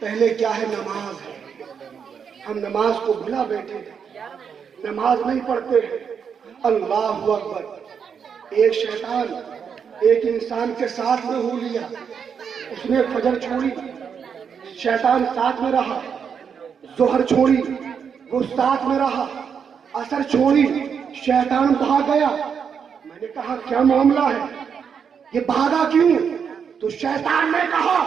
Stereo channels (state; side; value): quieter; left; 6.9 dB